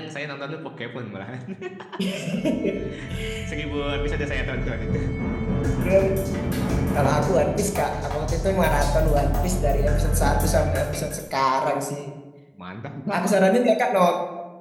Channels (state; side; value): identical; both; correlation 1.00